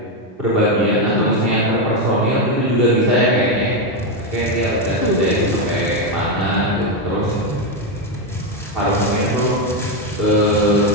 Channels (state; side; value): normal; both; correlation 0.07